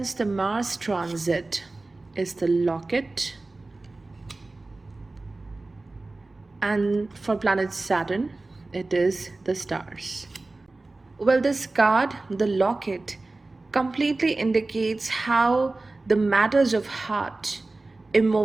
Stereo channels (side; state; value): left; quieter; 3.2 dB